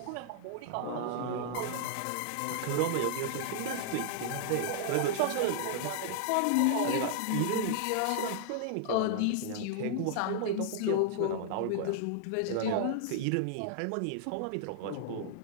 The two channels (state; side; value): different; both; correlation -0.01